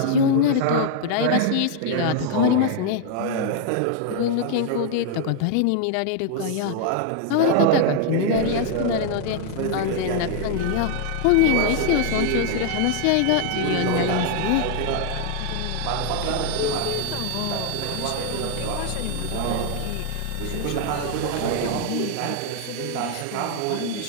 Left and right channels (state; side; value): different; both; correlation 0.00